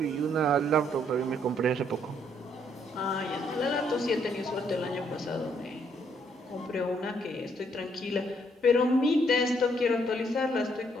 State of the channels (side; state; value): both; normal; correlation 0.69